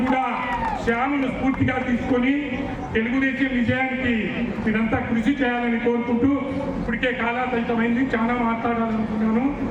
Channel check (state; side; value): identical; both; correlation 1.00